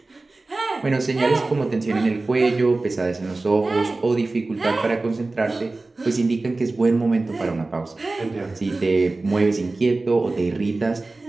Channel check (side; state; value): left; quieter; 3.3 dB